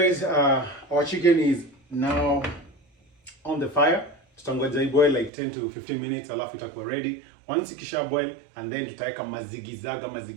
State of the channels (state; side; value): drops out; left; at 5.3 s